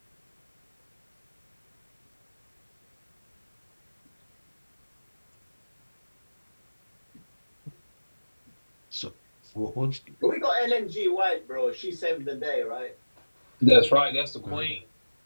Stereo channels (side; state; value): both; inverted; correlation -1.00